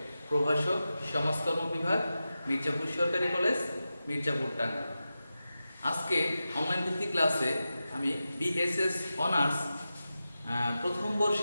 প্রভাষক, সমাজকর্ম বিভাগ, মির্জাপুর সরকারি কলেজ, মির্জাপুর টাঙ্গাইল। আজকে অনলাইন ভিত্তিক ক্লাসে আমি বিএসএস অনার্স প্রথম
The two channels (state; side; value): inverted; both; correlation -0.92